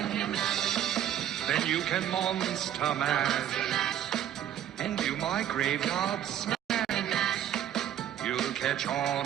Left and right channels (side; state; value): left; quieter; 10.7 dB